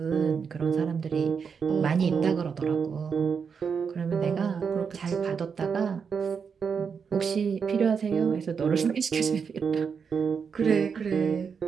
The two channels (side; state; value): left; quieter; 6.2 dB